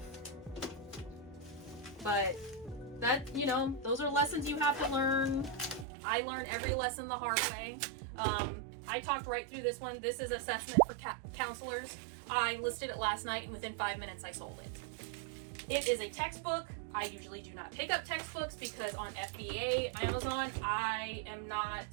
But that, you know, those are lessons you have to learn. I learn every lesson the hard way. I talked right through this one. This is assessment for counselors. I listed it last night, and within 5 minutes I sold it. It is a textbook. I usually do not pick up textbooks because on FBA, Amazon, I am not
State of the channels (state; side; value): drops out; left; at 5.9 s